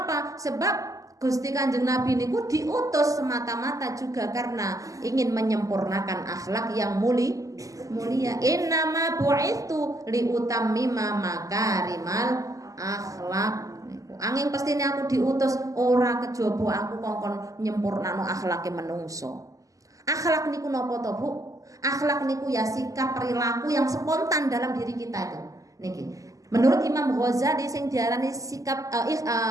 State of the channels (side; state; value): left; late; 0.16 ms